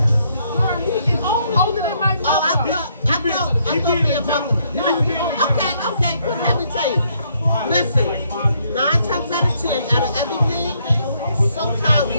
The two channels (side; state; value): both; inverted; correlation -0.71